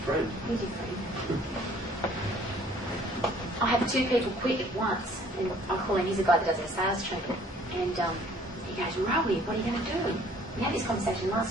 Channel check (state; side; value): normal; both; correlation 0.57